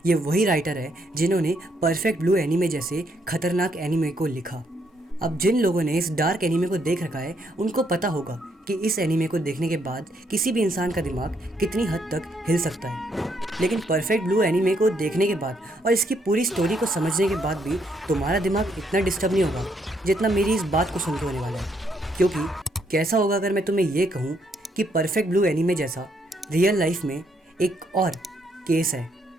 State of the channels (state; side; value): normal; both; correlation 0.73